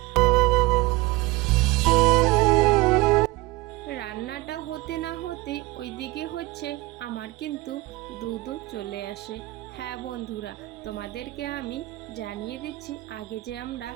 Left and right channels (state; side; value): quieter; left; 20.5 dB